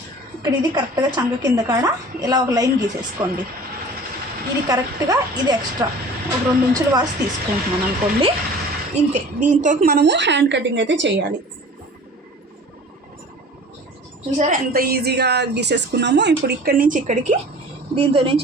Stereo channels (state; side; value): normal; both; correlation 0.43